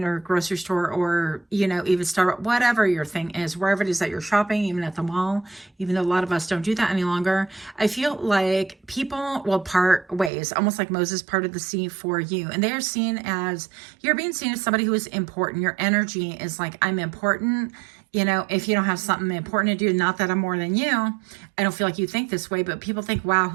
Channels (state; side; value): drops out; left; at 10.3 s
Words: or grocery store or, you know, even Starbucks, whatever your thing is, wherever it is that you're shopping, even at the mall, even though a lot of us don't do that any longer. I feel like people will part ways, almost like Moses parted the sea for you. And they are seen as, you're being seen as somebody who is important. Your energy is like, I'm important. You know, if you don't have something important to do, not that I'm more than you, I don't feel like you think this way, but people think, wow,